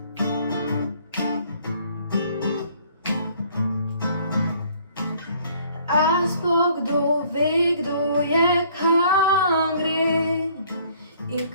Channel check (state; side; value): inverted; both; correlation -0.59